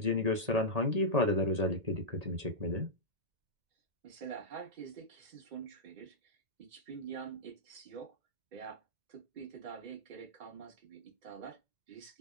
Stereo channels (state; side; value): late; left; 1.8 ms